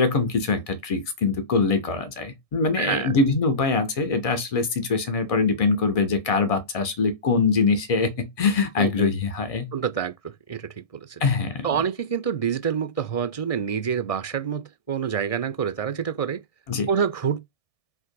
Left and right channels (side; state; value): right; late; 1.6 ms